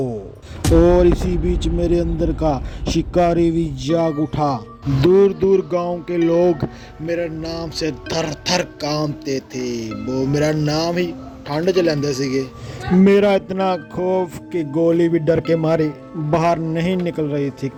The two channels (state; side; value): identical; both; correlation 1.00